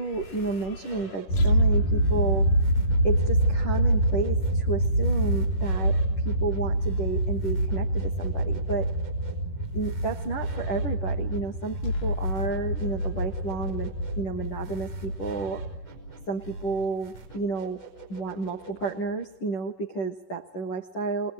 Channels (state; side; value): late; right; 11 ms